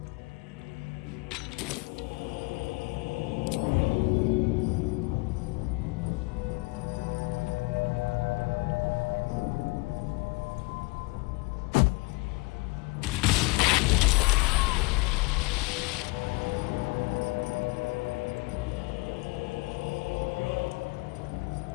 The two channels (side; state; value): right; quieter; 26.1 dB